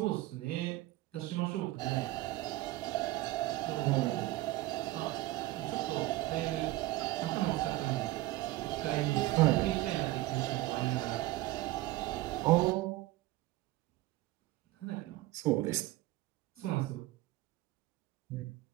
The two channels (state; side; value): quieter; left; 17.9 dB